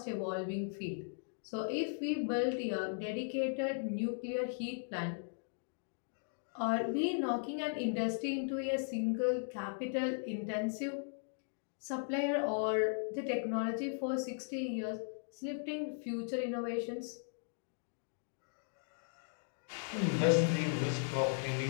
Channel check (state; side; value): silent; right; digital silence